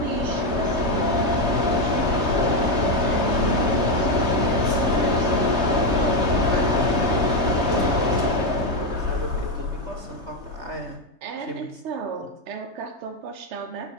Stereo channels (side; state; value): left; late; 3.3 ms